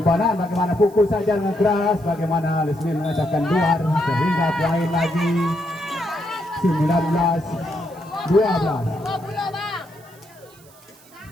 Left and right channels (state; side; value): noise; right; hiss, 26 dB below the sound